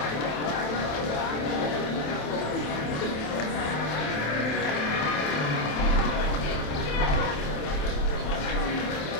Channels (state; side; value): late; right; 27 ms